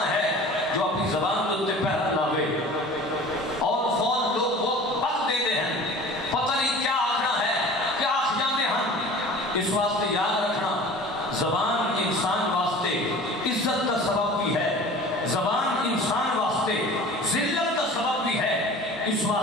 ہے جو اپنی زبان کے پہرا لاوے اور فون لوگ وہ وقت دے دے ہیں، پتہ نہیں کیا آخنا ہے، کیا آخ جانے ہیں۔ اس واسطے یاد رکھنا زبان انسان واسطے عزت کا سبب بھی ہے، زبان انسان واسطے ذلت کا سبب بھی ہے۔ اس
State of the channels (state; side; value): normal; both; correlation 0.42